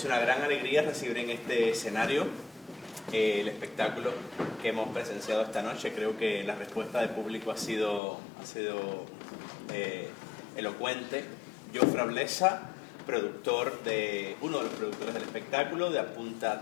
una gran alegría recibir en este escenario el espectáculo que hemos presenciado esta noche. Creo que la respuesta del público ha sido elocuente. Jofre Blesa, uno de los productores del espectáculo, de Apunta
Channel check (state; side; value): drops out; right; at 8.0 s